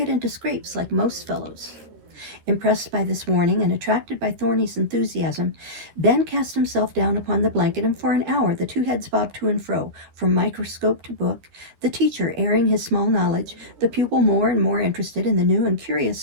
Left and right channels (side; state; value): left; late; 13 ms